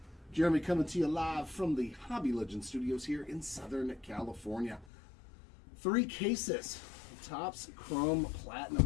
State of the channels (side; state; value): right; drops out; at 4.9 s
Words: Jeremy coming to you live from the Hobby Legend Studios here in Southern California. 3 cases, Topps Chrome